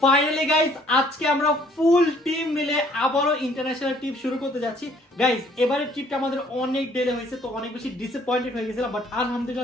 ফাইনালি গাইস, আজকে আমরা ফুল টিম মিলে আবারও ইন্টারন্যাশনাল ট্রিপ শুরু করতে যাচ্ছি। গাইস, এবারের ট্রিপটা আমাদের অনেক ডিলে হয়েছে, তো অনেক বেশি ডিসঅ্যাপয়েন্টেড হয়ে গেছিলাম, বাট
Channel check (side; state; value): both; normal; correlation 0.60